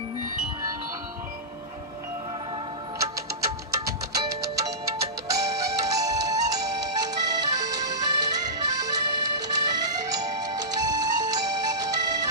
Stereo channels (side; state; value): both; normal; correlation -0.17